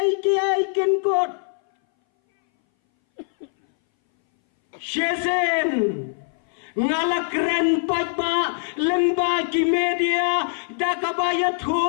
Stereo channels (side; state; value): right; silent; 61 dB below the other